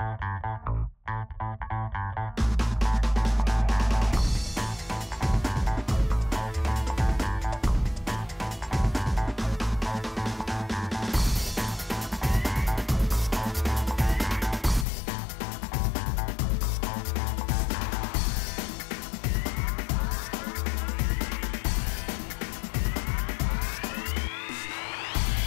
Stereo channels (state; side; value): drops out; right; at 14.9 s